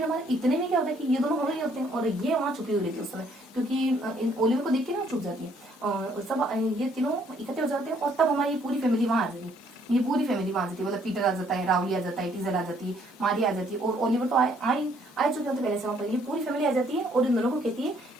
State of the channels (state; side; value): normal; both; correlation 0.65